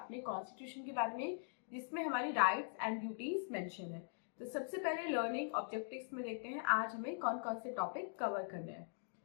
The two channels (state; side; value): silent; right; digital silence